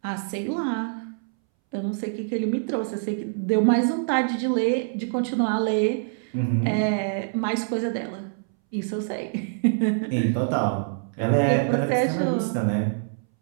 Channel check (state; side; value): silent; left; 62 dB below the other